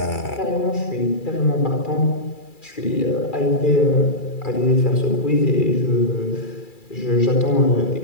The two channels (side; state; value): right; late; 2.3 ms